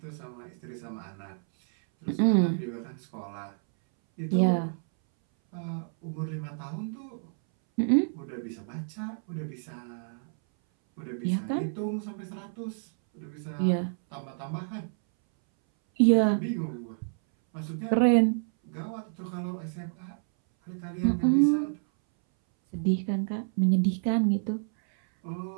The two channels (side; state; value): left; silent; 58 dB below the other